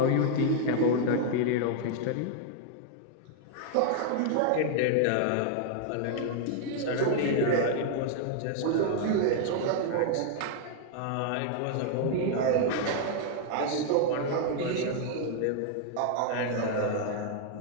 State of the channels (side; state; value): both; different; correlation 0.00